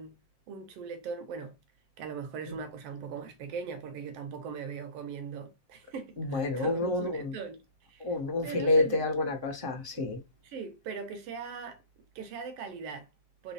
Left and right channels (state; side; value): late; left; 7.6 ms